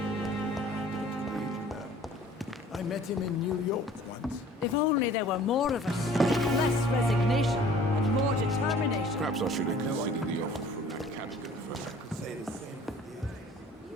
I met him in New York once. If only there were more of us. Less resignation and more determination. Perhaps I should have considered the offer from that Cadigan first. I could say the same for the others.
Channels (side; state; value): both; normal; correlation 0.50